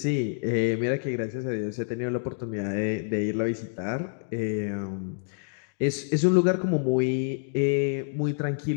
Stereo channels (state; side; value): silent; right; digital silence